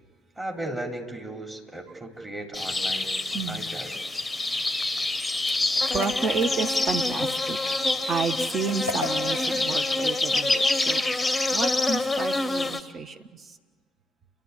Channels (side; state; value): both; normal; correlation 0.83